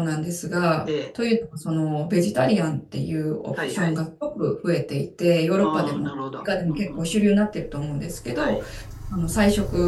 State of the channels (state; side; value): identical; both; correlation 1.00